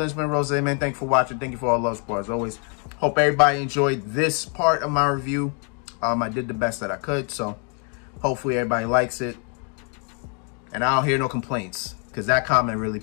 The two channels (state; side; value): quieter; right; 39.3 dB